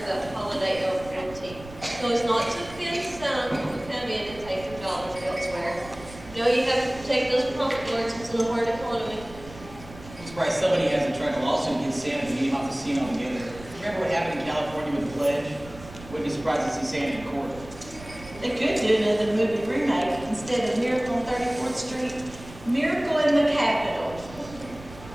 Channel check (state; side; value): noise; right; rumble, 17 dB below the sound